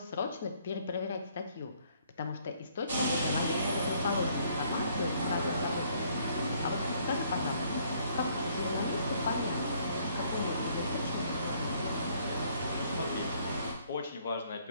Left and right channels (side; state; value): both; inverted; correlation -0.64